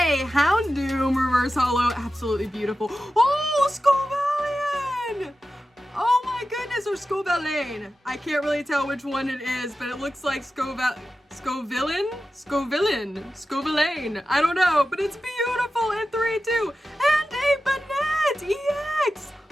Houndoom reverse holo, absolutely beautiful. Oh, Scovillain! Oh my goodness, or Scovillain. I can't really tell which one it is, but it looks like Scovillain? Scovillain. I don't know, but it's beautiful in 3-2. And a Banette EX!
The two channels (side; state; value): both; normal; correlation 0.93